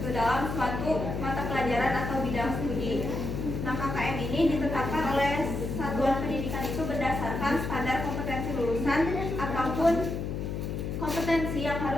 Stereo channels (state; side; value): noise; left; hum, 4 dB below the sound